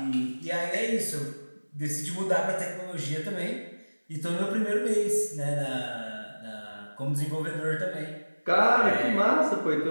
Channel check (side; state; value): both; inverted; correlation -1.00